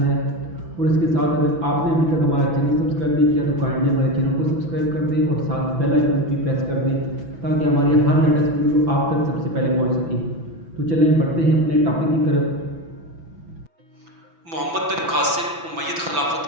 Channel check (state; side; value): late; left; 6.0 ms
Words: ہے، اور اس کے ساتھ اگر آپ نے ابھی تک ہمارا چینل سبسکرائب نہیں کیا تو کائنڈلی ہمارے چینل کو سبسکرائب کر دیں اور ساتھ بیل آئیکن بھی پریس کر دیں تاکہ ہماری ہر لیٹسٹ ویڈیو آپ تک سب سے پہلے پہنچ سکے۔ تو چلیں بڑھتے ہیں اپنے ٹاپک کی طرف۔ محمد بن قاسم امید